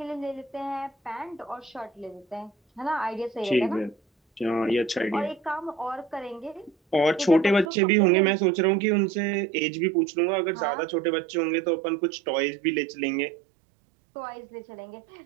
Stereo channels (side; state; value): left; drops out; at 7.7 s